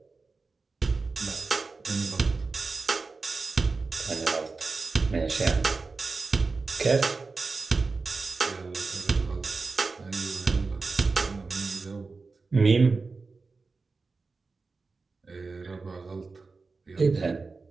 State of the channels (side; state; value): left; quieter; 4.1 dB